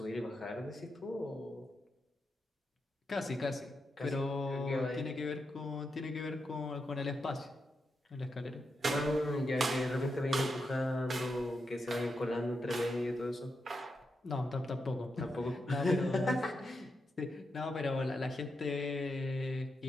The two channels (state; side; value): normal; both; correlation 0.85